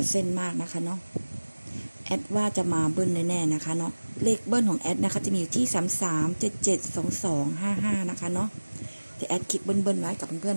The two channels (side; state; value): both; inverted; correlation -1.00